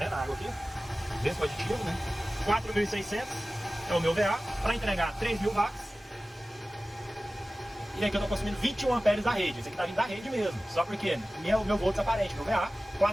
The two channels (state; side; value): normal; both; correlation 0.96